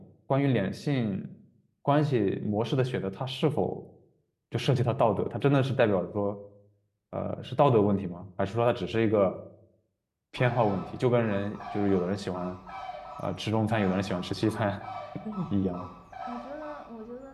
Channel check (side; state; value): both; identical; correlation 1.00